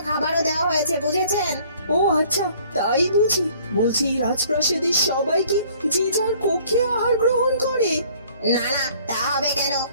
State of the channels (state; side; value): inverted; both; correlation -0.56